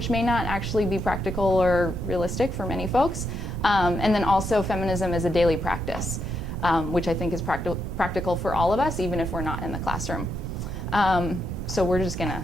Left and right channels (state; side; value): noise; right; rumble, 6 dB below the sound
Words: may not actually be practical or realistic for many folks, and then also feminism as a daily practice, which I think is practical for all of us, even if we're not in the classroom. So we're just going to